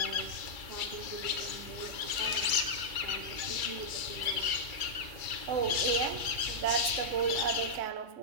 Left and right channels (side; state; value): left; late; 2.3 ms